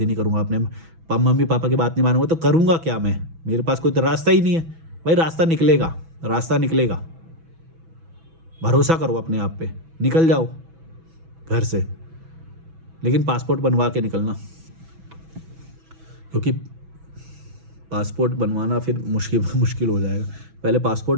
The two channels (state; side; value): late; left; 6.1 ms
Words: नहीं करूँगा, अपने मम्मी पापा की बात नहीं मानूंगा तो करूँगा क्या मैं, मेरे पास कोई तो रास्ता ही नहीं है। भाई रास्ता निकलेगा, रास्ता निकलेगा। भरोसा करो अपने आप पे, निकल जाओ घर से, लेकिन पासपोर्ट बनवा के निकलना, क्योंकि पासपोर्ट बनवाना फिर मुश्किल हो जाएगा। पहले